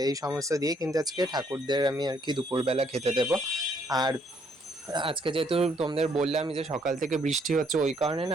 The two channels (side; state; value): both; normal; correlation 0.68